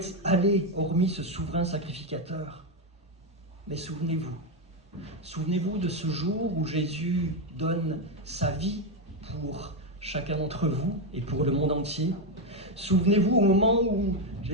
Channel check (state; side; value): normal; both; correlation 0.07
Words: aller hormis ce souverain sacrificateur. Mais souvenez-vous de ce jour où Jésus donne sa vie pour chacun d'entre vous et pour le monde entier. Souvenez-vous au moment où